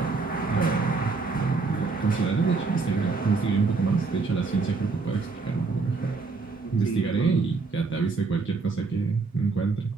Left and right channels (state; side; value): quieter; left; 4.2 dB